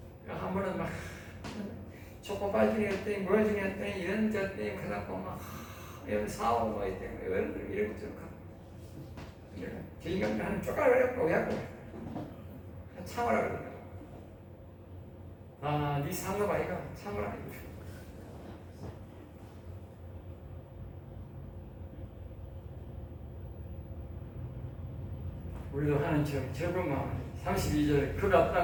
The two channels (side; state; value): both; identical; correlation 1.00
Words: 한 번은 막 초코바이 중이었더니 뭐 중이었더니 이런 저더니 그래갖고 막 이런 사오고 뭐 있더니 여러분들 이런 거 좀 저 인간들 하는 쪼가리를 왜 하고 참으라 그러더라고. 아, 네 상급 아이가 참으라 이거. 우리도 하는 적은 마음. 32절 그가